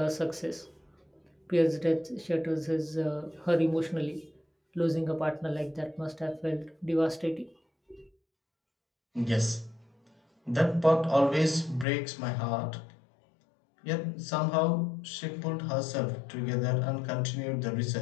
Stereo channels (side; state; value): right; drops out; at 11.9 s